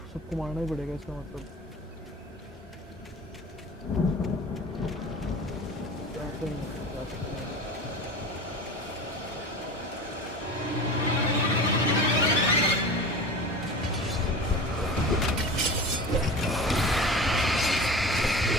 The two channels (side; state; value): both; normal; correlation 0.34